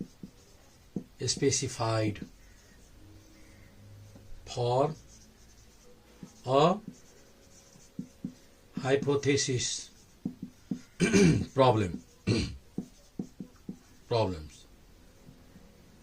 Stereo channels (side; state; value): both; identical; correlation 1.00